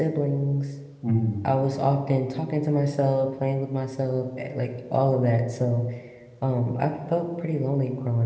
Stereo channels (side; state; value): both; identical; correlation 1.00